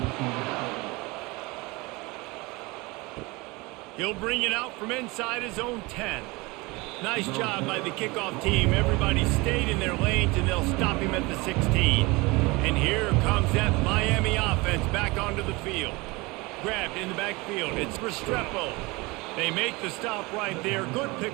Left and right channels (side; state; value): left; quieter; 24.0 dB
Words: He'll bring it out from inside his own 10. Nice job by the kickoff team. Everybody stayed in their lanes, and they'll stop him at the 16. And here comes that Miami offense back onto the field. Grabbed in the backfield. It's Restrepo. They make the stop right there. Good